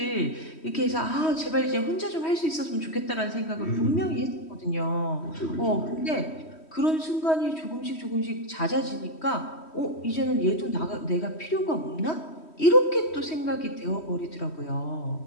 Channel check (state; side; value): late; right; 3.1 ms